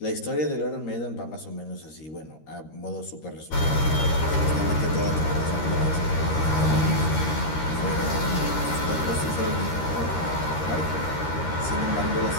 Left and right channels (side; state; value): right; late; 13 ms